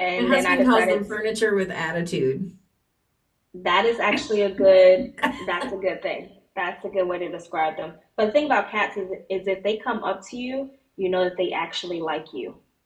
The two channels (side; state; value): both; identical; correlation 1.00